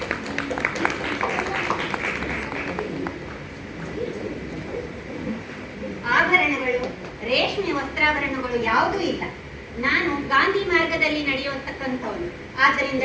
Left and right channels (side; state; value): both; identical; correlation 1.00